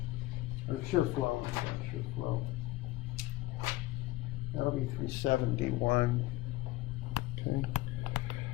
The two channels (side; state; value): right; quieter; 18.3 dB